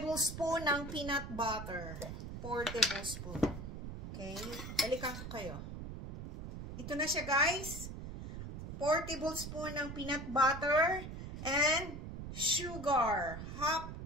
ng peanut butter. 4 tablespoon. Okay? Balikan ko kayo. Ito na siya, guys. 4 tablespoon ng peanut butter and sugar. Half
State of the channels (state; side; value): noise; right; rumble, 8 dB below the sound